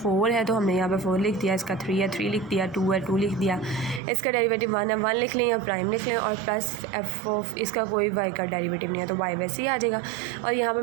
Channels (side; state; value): left; drops out; at 4.0 s